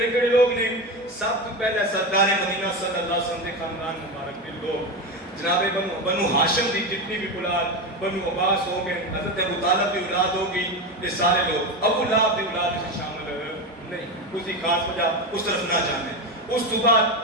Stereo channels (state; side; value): normal; both; correlation 0.17